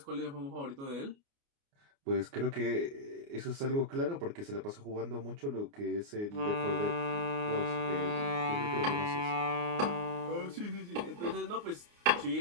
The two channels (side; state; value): left; late; 29 ms